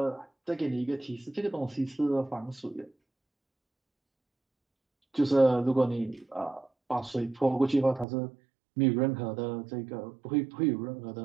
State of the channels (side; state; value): left; drops out; at 8.1 s